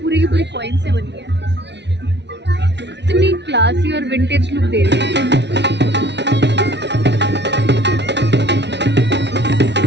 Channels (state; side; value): late; left; 0.50 ms